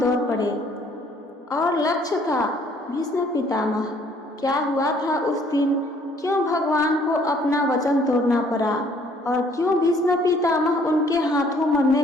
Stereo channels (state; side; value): normal; both; correlation 0.61